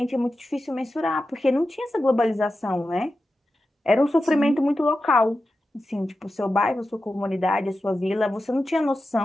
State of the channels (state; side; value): normal; both; correlation 0.92